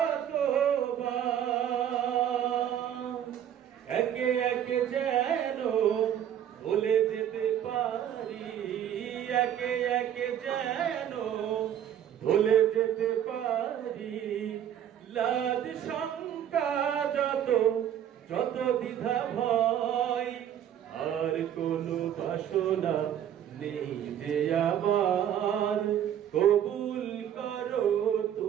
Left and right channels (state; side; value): quieter; left; 10.0 dB